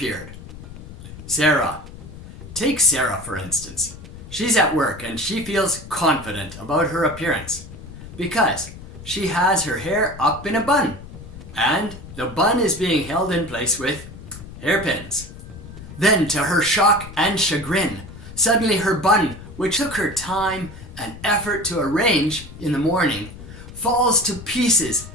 Sarah. Take Sarah for instance. She's at work and she feels confident about her appearance because she has her hair up in a bun, and the bun is being held in place with hairpins. Then, to her shock and chagrin, suddenly her bun, which took her time and effort to arrange in the morning, falls to pieces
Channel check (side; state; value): left; noise; rumble, 15 dB below the sound